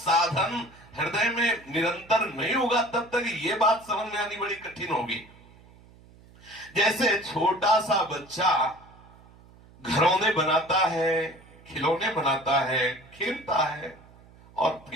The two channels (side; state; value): right; noise; hum, 24 dB below the sound